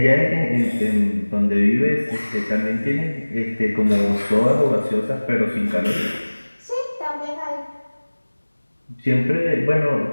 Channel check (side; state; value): both; inverted; correlation -1.00